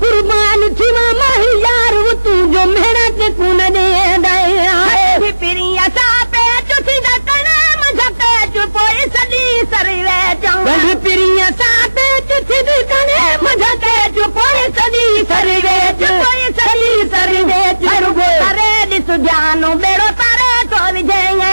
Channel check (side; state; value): both; inverted; correlation -1.00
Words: कुर्बान थीवा माही यार वो तू जो मेरा ते कुन दे दे पिरिया सा पे चुथी दा कने मझके चुपोई सदी सरवे चंग पिरिया सा पे चुथी दा कने मझके चुपोई सदी सरवे चुपोई सदी सरवे चुरगो अरे दिस जानो बेड़ो तारे तो विजेंगे